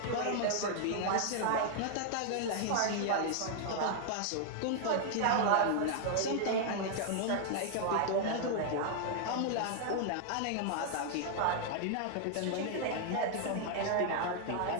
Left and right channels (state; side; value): different; both; correlation 0.00